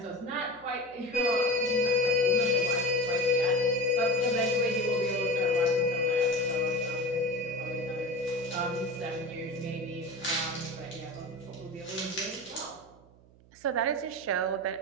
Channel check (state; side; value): noise; right; hum, 26 dB below the sound